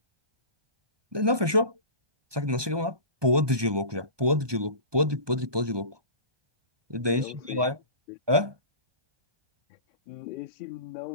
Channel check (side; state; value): left; late; 1.2 ms